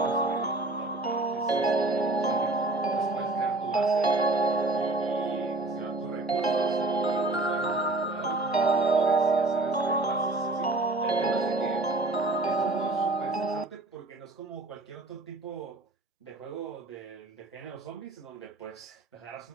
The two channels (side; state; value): left; quieter; 3.0 dB